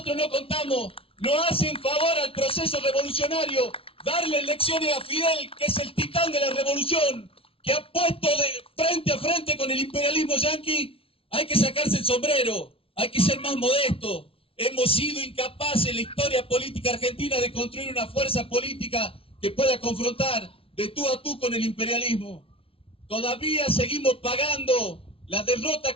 no contamos. No hacen favor al proceso revolucionario darle lecciones a Fidel, que es el titán de la revolución, que ha puesto de frente a frente con el imperialismo yanqui. Hay que sacarse el sombrero, hay que ser más modesto. Hemos sido incapaces en la historia política argentina de construir una fuerza política que pueda confrontar de tú a tú con el imperialismo. Todavía seguimos pagando la derrota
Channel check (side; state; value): right; late; 0.27 ms